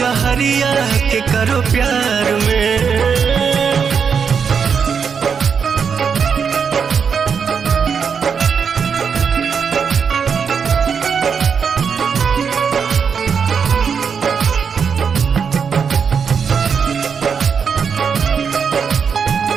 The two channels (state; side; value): quieter; left; 6.4 dB